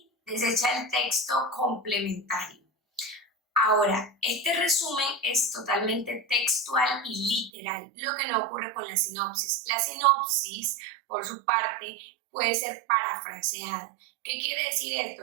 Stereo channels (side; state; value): left; drops out; at 7.5 s